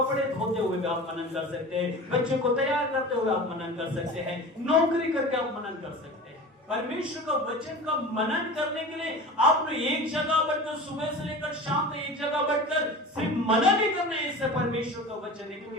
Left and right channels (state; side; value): normal; both; correlation 0.34